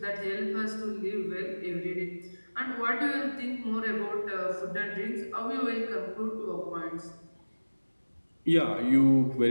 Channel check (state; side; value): inverted; both; correlation -1.00